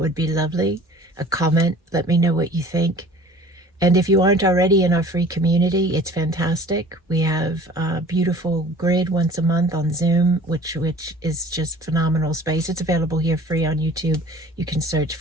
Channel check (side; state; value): both; normal; correlation 0.47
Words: would be lovely. A comment, let me know what you think. And if you aren't already in our free community, it's fantastic. We have a beautiful grid once a month on Zoom, which is just phenomenal space. It's available here free on YouTube. You can search